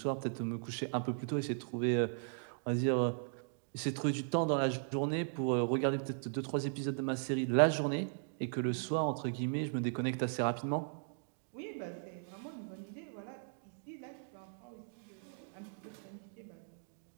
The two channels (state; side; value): silent; left; digital silence